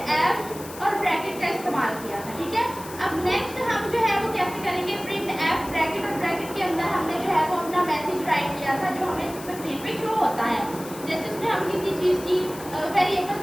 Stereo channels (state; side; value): noise; left; hiss, 15 dB below the sound